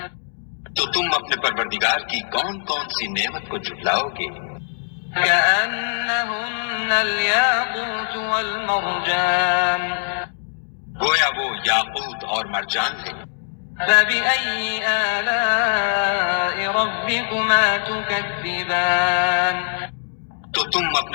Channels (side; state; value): right; silent; digital silence